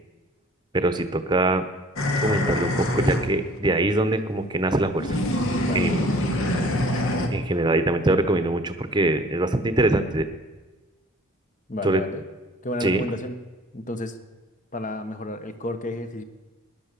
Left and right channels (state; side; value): normal; both; correlation 0.51